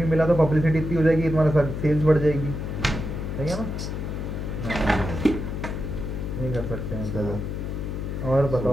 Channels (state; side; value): noise; left; hum, 4 dB below the sound